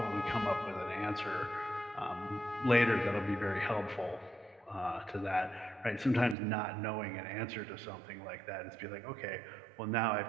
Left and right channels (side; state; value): left; drops out; at 6.4 s